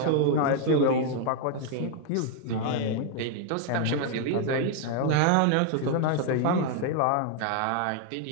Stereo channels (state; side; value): different; both; correlation 0.00